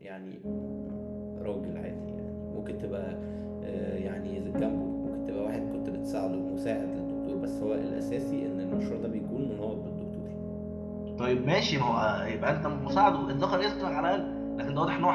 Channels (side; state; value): both; identical; correlation 1.00